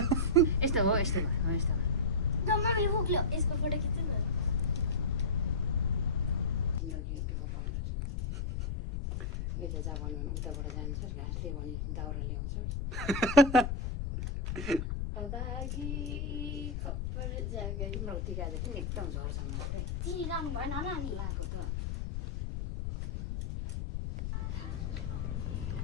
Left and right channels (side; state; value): left; noise; rumble, 2 dB below the sound